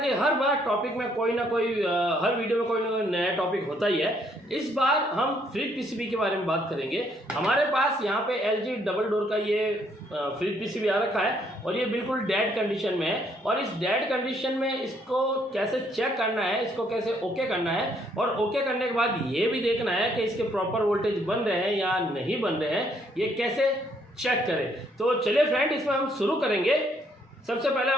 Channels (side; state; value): both; normal; correlation 0.68